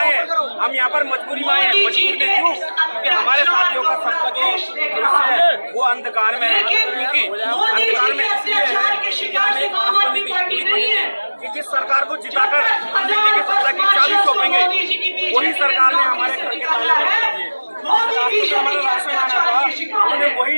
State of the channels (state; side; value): inverted; both; correlation -1.00